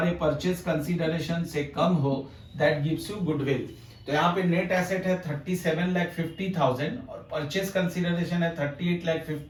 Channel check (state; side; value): identical; both; correlation 1.00